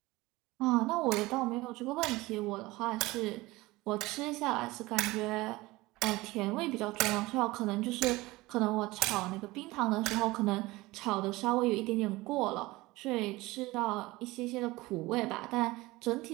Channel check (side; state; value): left; quieter; 20.4 dB